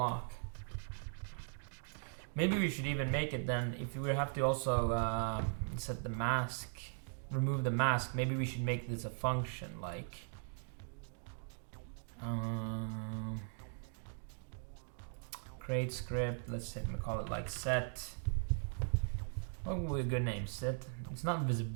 Maybe we should even make it then, if we have to also set the mask, remove the mask, maybe we should make this a function, like create script. Let's say we call it like set. What would be a good name? Set. It's not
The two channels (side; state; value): left; silent; digital silence